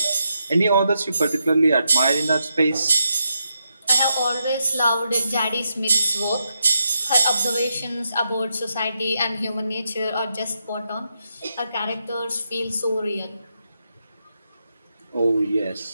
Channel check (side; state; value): both; inverted; correlation -0.84